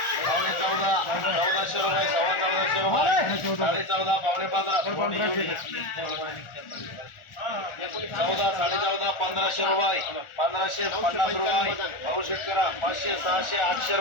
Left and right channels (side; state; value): right; late; 1.4 ms